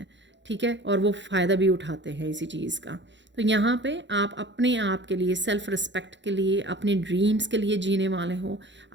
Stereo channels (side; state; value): left; late; 0.53 ms